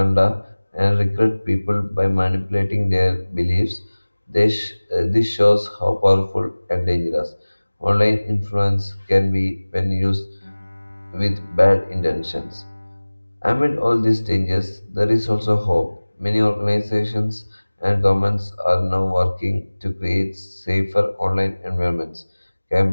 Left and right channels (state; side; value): inverted; both; correlation -1.00